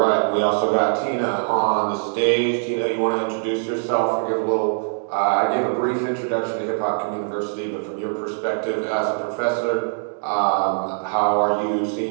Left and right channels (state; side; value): silent; left; digital silence